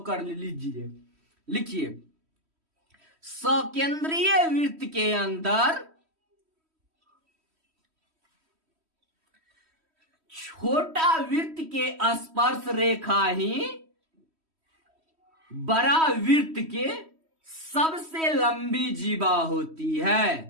कर लीजिए, लिखिए। सकेंद्रीय वृत्त के अंदर छोटा वृत्त के स्पर्श रेखा ही बड़ा वृत्त के सबसे लंबी जीवा होती है।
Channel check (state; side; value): late; left; 3.1 ms